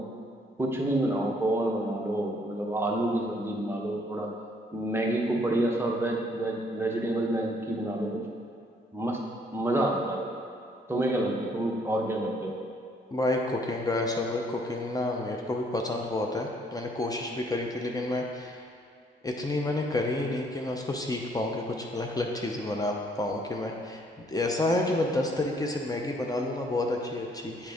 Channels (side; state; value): both; normal; correlation 0.65